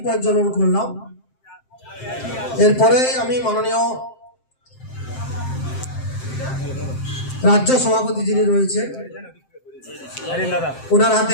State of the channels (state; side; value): late; right; 7.6 ms